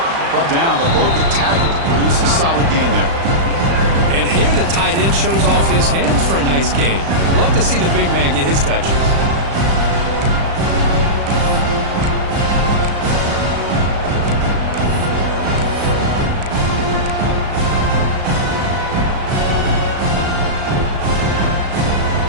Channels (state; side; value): late; left; 36 ms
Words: Brought down, but broke a tackle to produce a solid gain there. And here the tight end shows off his hands for a nice gain. Love to see the big man get his touches.